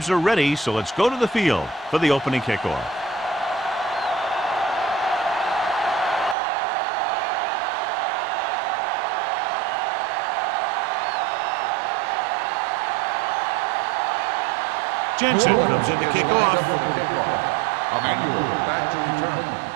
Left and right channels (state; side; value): drops out; left; at 6.4 s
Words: are ready, so let's go to the field for the opening kickoff. Jensen comes in to kick off. Back to return.